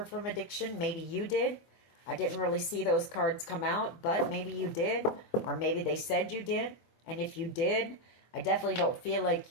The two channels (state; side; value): late; right; 24 ms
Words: from addiction. Maybe you did. I didn't really see those cards come out, but maybe you did. Or maybe they said you did. And if you did, I definitely don't feel